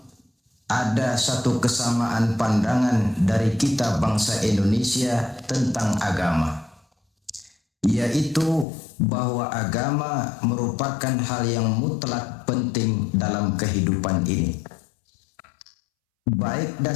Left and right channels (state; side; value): drops out; right; at 8.7 s